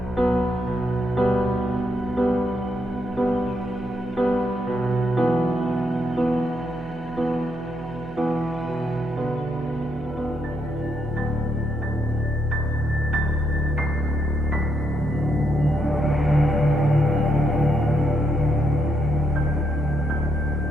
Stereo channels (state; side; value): noise; right; hum, 14 dB below the sound